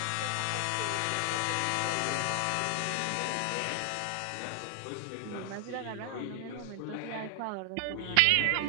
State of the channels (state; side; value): different; both; correlation 0.00